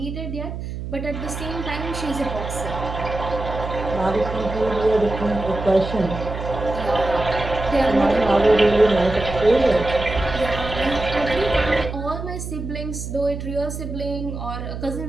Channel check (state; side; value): noise; right; hum, 7 dB below the sound